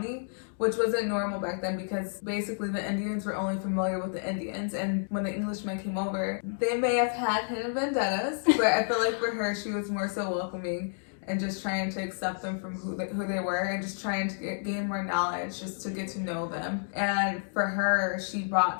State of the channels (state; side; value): silent; right; digital silence